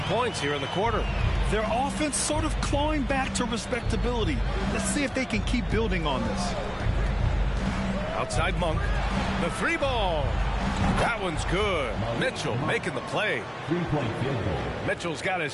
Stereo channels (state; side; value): identical; both; correlation 1.00